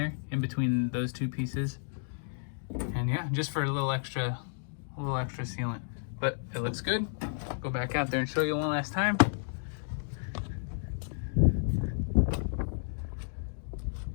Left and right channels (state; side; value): silent; right; digital silence